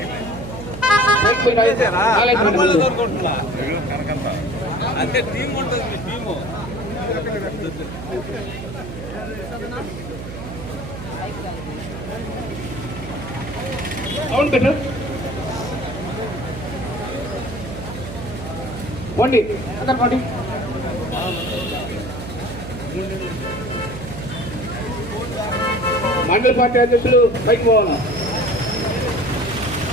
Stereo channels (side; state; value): right; noise; hum, 10 dB below the sound